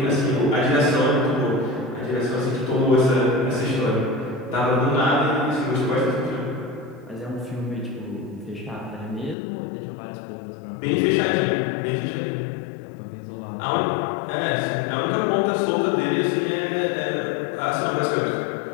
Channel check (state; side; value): drops out; right; at 9.3 s